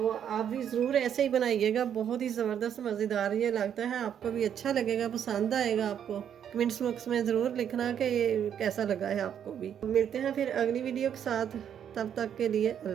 आप भी ज़रूर ऐसे ही बनाइएगा, बहुत ही ज़बरदस्त मज़ेदार ये लगता है, आपको भी अच्छा लगेगा, पसंद आएगा आपको। कमेंट्स बॉक्स में ज़रूर लिखना कि ये कैसा लगा है आपको भी। मिलते हैं फिर अगली वीडियो के साथ, तब तक के लिए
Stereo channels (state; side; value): quieter; left; 9.0 dB